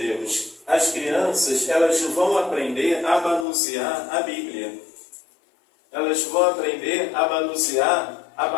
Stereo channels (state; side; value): drops out; right; at 3.5 s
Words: As crianças elas vão aprender a manusear a Bíblia. Elas vão aprender a manusear a